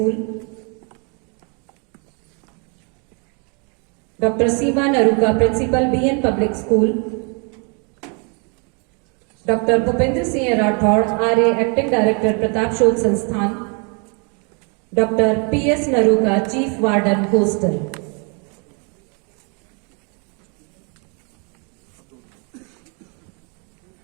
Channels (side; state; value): left; quieter; 35.5 dB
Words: doctor Seema Naruka principal BN public school, doctor Bhupendra Singh Rathore Arya acting director Pratap Shodh Sansthan, doctor PS Naruka chief warden hostel.